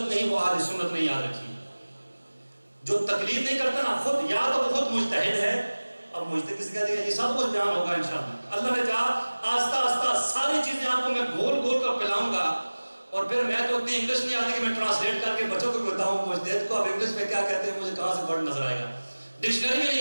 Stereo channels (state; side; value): inverted; both; correlation -1.00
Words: نہیں وہ اہل سنت نہیں. یاد رکھیے جو تقلید نہیں کرتا نا، خود یا تو وہ خود مجتہد ہے. اب مجتہد کسی کہہ دے گا، یہ سب کچھ بیان ہوگا انشاءاللہ. اللہ نے کہا آہستہ آہستہ ساری چیزیں آپ کو میں گول گول کر پلاؤں گا. اور پھر میں تو اتنی انگلش نہیں آتی کہ میں ٹرانسلیٹ کر کے بچوں کو بتاؤں مجتہد کو اب انگلش میں کیا کہتے ہیں، مجھے کہاں سے ورڈ نظر آئے گا، ڈکشنری میں